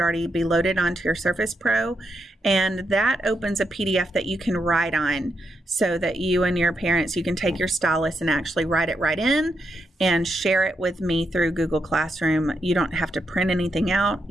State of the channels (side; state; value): both; normal; correlation 0.82